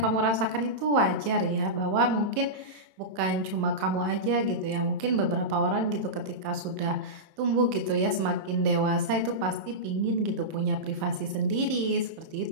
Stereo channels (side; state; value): left; late; 27 ms